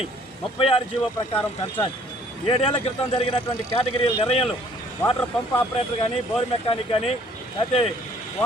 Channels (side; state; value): both; normal; correlation 0.59